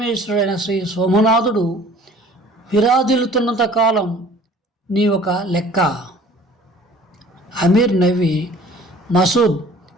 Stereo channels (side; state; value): both; normal; correlation 0.50